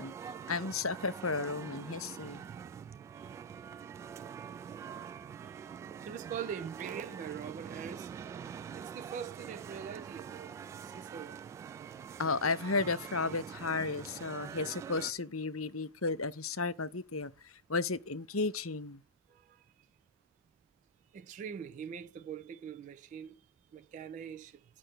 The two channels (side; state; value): both; normal; correlation -0.15